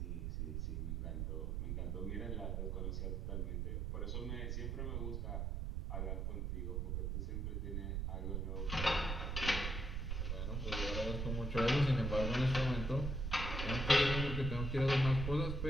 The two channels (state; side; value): noise; right; rumble, 1 dB below the sound